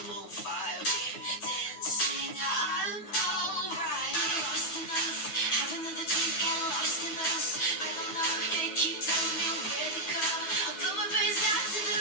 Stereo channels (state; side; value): late; right; 9.3 ms